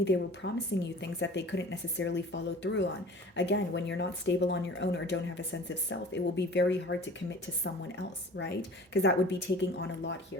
they were promising you things that they couldn't necessarily follow through on. Again, when you're not stable on your own or don't have a sense of self, it will be very hard to commit to someone else, right? Because that would be taking on a lot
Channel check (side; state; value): both; normal; correlation 0.43